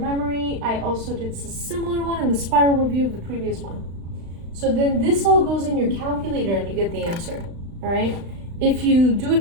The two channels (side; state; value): left; late; 35 ms